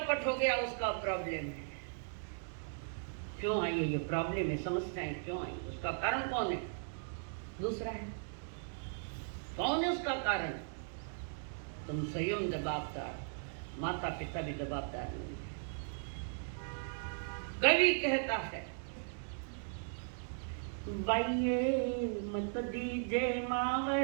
हो गया उसका प्रॉब्लम है। क्यों आई है ये प्रॉब्लम है, समस्याएं क्यों आई? उसका कारण कौन है? दूसरा है। कौन है उसका कारण? तुम स्वयं जवाबदार, माता पिता भी जवाबदार नहीं है। कवि कहता है बाइये मत दीजे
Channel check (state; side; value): silent; left; digital silence